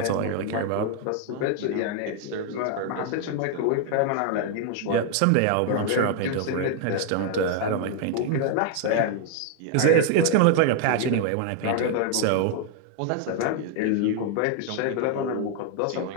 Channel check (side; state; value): both; different; correlation 0.00